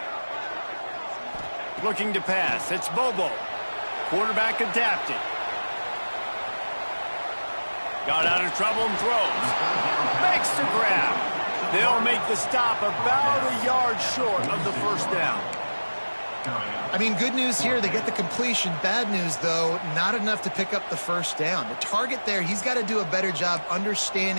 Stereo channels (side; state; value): both; inverted; correlation -1.00